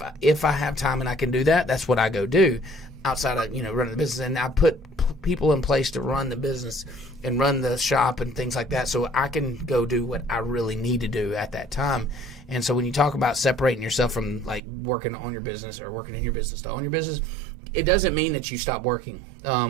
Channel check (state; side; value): drops out; left; at 14.6 s